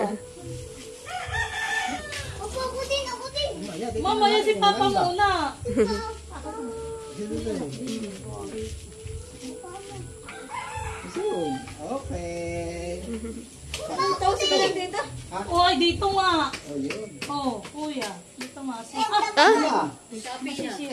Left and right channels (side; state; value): both; identical; correlation 1.00